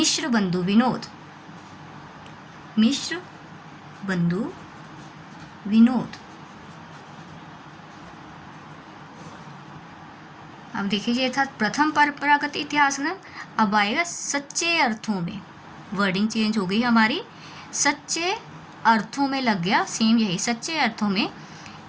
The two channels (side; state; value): both; identical; correlation 1.00